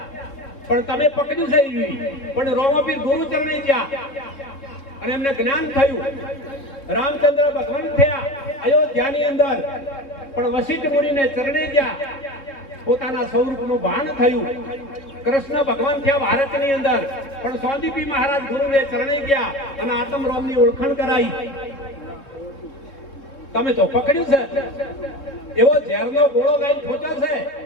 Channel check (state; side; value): late; right; 3.5 ms